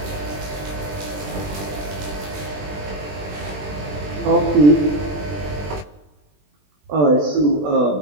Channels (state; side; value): late; left; 20 ms